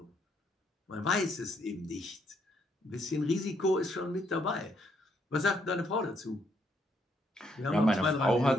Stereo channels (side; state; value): both; normal; correlation 0.73